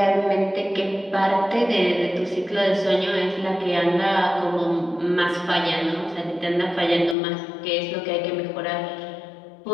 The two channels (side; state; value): right; drops out; at 7.2 s